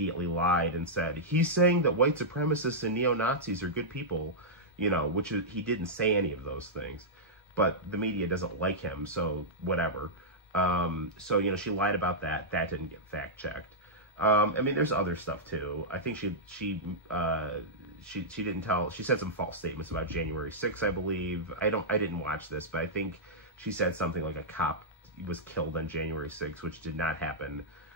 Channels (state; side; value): normal; both; correlation -0.10